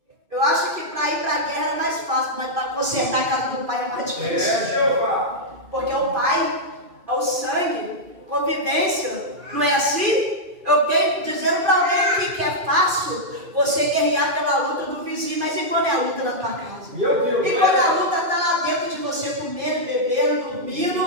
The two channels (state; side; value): late; left; 2.5 ms